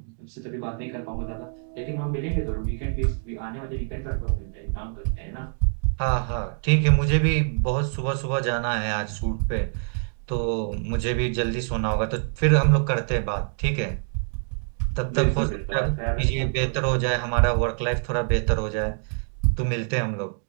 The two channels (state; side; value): silent; left; 62 dB below the other